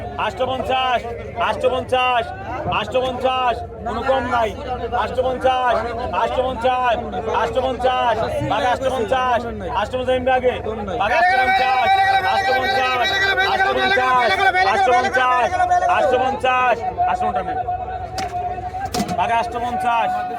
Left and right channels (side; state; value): both; identical; correlation 1.00